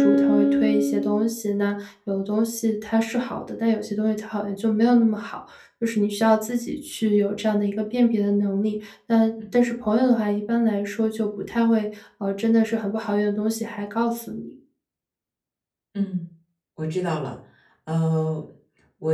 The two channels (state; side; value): identical; both; correlation 1.00